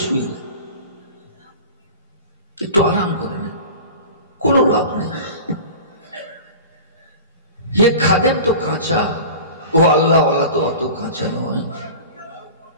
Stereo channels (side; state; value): both; inverted; correlation -0.37